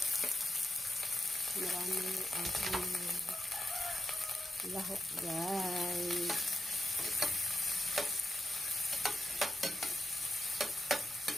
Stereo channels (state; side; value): normal; both; correlation 0.90